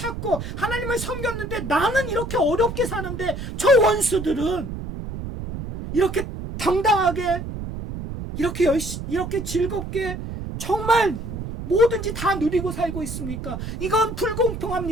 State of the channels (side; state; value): right; noise; rumble, 7 dB below the sound